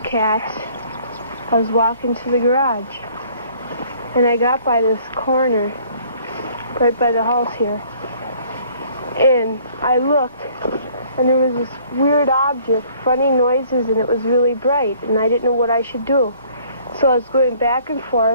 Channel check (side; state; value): both; inverted; correlation -0.57